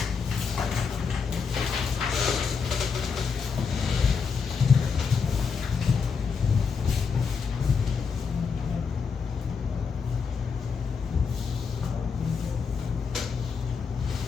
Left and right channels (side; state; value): right; quieter; 5.7 dB